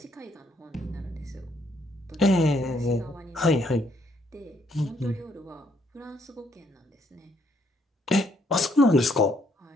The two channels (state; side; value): normal; both; correlation 0.69